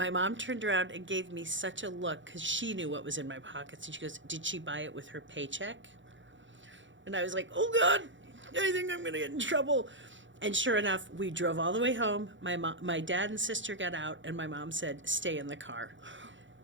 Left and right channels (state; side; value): late; left; 0.55 ms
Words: mom turned around and gave me such a look because she knew what was in my pockets. And she goes, did she buy it with her paycheck? And I was like, oh, God, I think I'm going to get in trouble. And sure enough, we drove all the way home. My dad and sister got out, and my mom said, stay in the car.